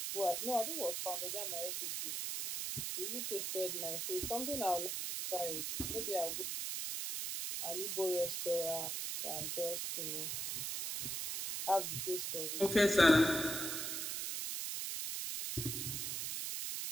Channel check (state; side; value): noise; right; hiss, 2 dB below the sound